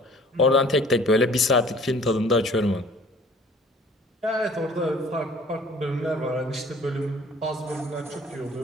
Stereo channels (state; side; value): normal; both; correlation 0.51